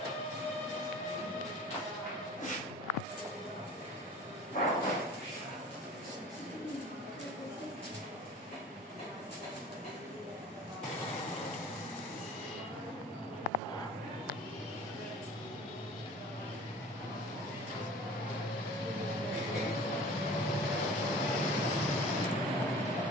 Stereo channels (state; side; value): normal; both; correlation 0.44